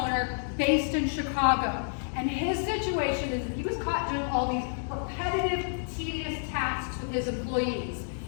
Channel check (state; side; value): silent; right; digital silence